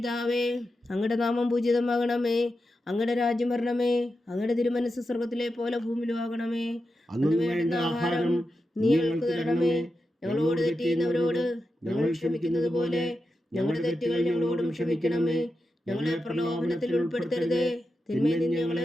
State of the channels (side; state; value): both; normal; correlation 0.89